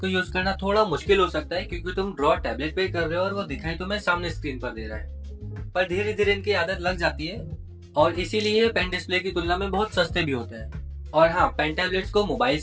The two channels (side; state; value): both; identical; correlation 1.00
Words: यूज करना थोड़ा मुश्किल हो सकता है क्योंकि तुम ड्रॉ टैबलेट पे कर रहे हो और वो दिखाई तुम्हें सामने स्क्रीन पर दे रहा है, पर धीरे धीरे इनकी आदत लग जाती है और इसीलिए पेन डिस्प्ले की तुलना में बहुत सस्ते भी होते हैं। और हाँ, पेन टैबलेट्स को मोबाइल